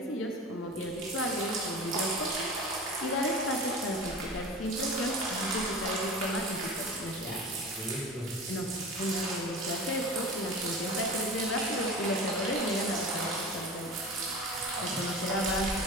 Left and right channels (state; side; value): normal; both; correlation 0.34